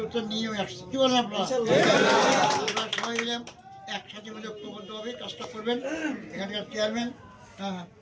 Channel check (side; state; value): both; identical; correlation 1.00